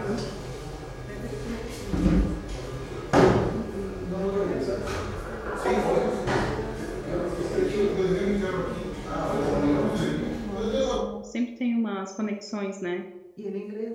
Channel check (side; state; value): both; identical; correlation 1.00